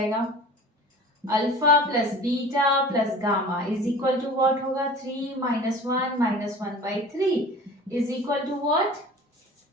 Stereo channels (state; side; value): normal; both; correlation 0.41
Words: alpha plus beta plus gamma is equal to what होगा 3 -1 -1/3 is equal to what